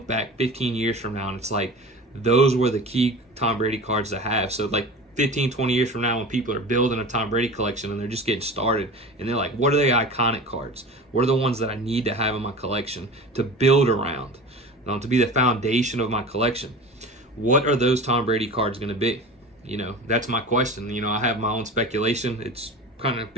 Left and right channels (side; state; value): both; normal; correlation 0.35